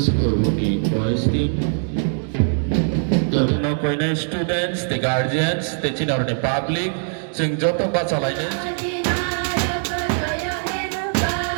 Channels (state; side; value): silent; left; digital silence